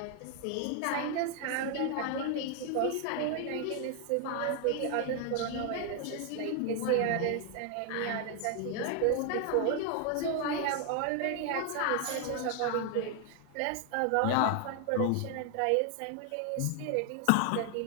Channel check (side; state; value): both; different; correlation 0.00